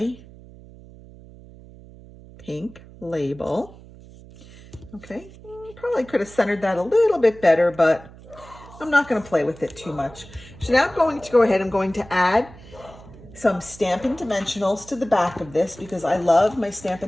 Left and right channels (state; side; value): noise; right; hum, 20 dB below the sound